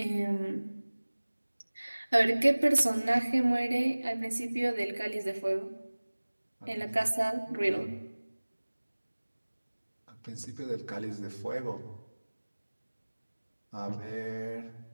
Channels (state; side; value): inverted; both; correlation -1.00